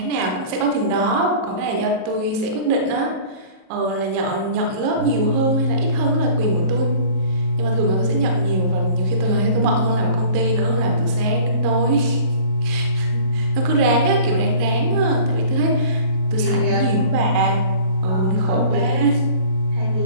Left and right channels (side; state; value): left; late; 38 ms